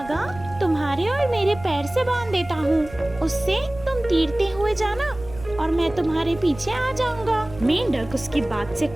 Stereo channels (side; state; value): right; noise; rumble, 16 dB below the sound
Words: तुम्हारे और मेरे पैर से बांध देता हूँ। उससे तुम तैरते हुए जाना और मैं तुम्हारे पीछे आ जाऊंगा। मेंढक उसकी बात से